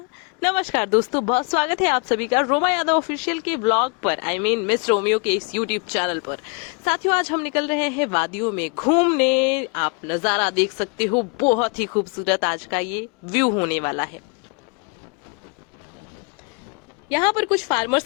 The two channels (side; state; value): right; quieter; 33.5 dB